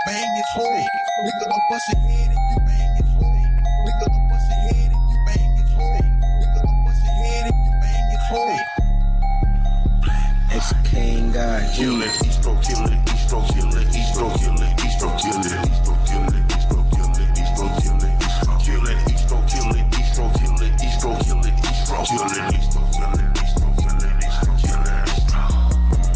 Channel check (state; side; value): identical; both; correlation 1.00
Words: bang his hole. Nigga, I'll bust your head if you bang his hole. Nigga, I'll bust your head if you bang his hole. Nigga, I'll bust your head if you bang his hole. It's King God. Kill it, Eastro, kill it, Eastro, kill it, Eastro, kill it, Eastro, kill it, Eastro, kill it, Eastro, kill it, Eastro, kill it, kill it, Eastro, kill it, Eastro, kill it, Eastro, kill it, Eastro, kill it, Eastro, kill it, Eastro, kill it, Eastro, kill it.